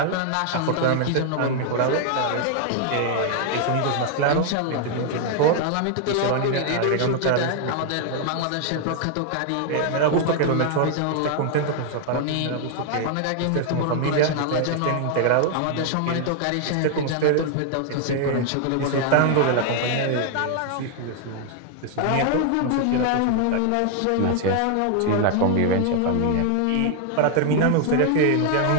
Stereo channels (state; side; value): different; both; correlation 0.00